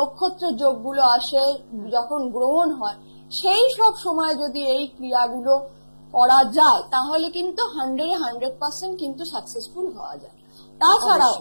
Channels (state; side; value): inverted; both; correlation -1.00